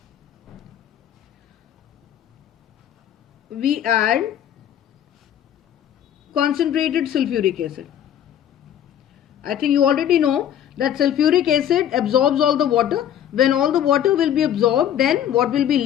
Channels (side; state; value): right; quieter; 10.3 dB